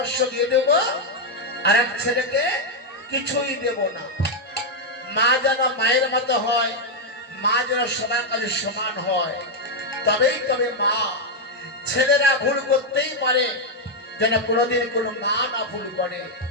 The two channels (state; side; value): normal; both; correlation 0.01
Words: দিয়ে দেব, আর এক ছেলেকে কিছুই দেব না। মা যেন মায়ের মতো হয়, মা যেন সবার কাছে সমান হয়, তবেই তবে মা। ছেলেরা ভুল করতেই পারে, যেন কোনোদিন কোনো মা না ভুল করে।